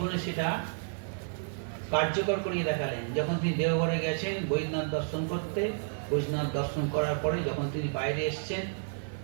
সেটা কার্যকর করিয়ে দেখালেন। যখন তিনি দেওঘরে গেছেন বৈদ্যনাথ দর্শন করতে, বৈদ্যনাথ দর্শন করার পরে যখন তিনি বাইরে এসছেন,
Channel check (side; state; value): left; silent; 57 dB below the other